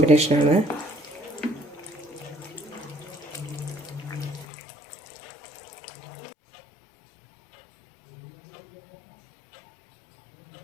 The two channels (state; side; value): drops out; right; at 4.5 s